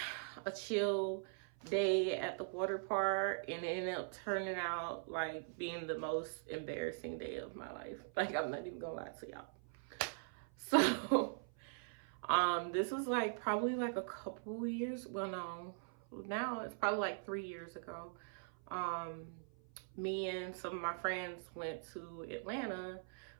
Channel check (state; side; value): silent; left; 50 dB below the other